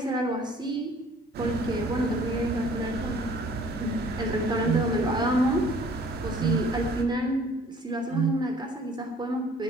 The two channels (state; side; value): normal; both; correlation 0.54